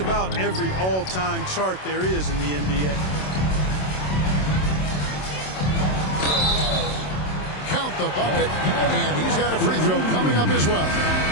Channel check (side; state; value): right; late; 27 ms